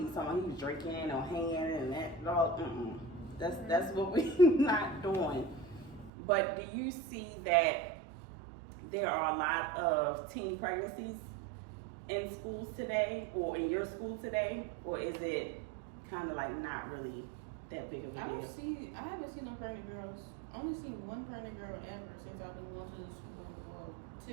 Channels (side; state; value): left; drops out; at 6.1 s